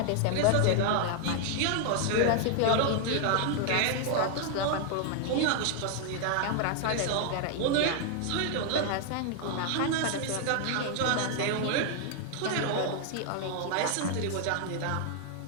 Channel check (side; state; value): both; different; correlation 0.00